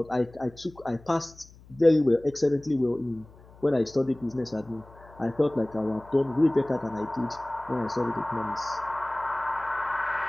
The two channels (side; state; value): left; noise; hum, 23 dB below the sound